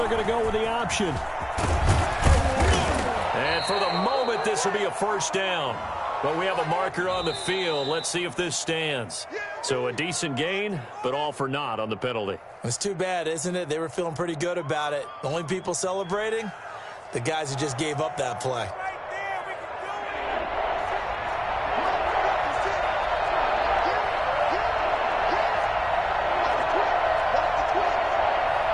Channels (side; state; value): both; identical; correlation 1.00